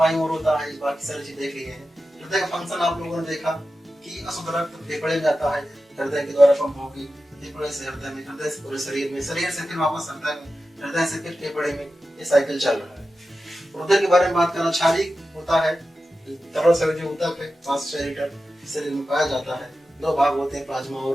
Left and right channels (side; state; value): both; normal; correlation 0.93